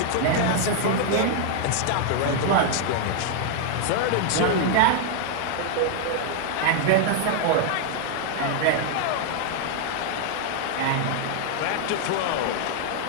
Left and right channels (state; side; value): different; both; correlation 0.00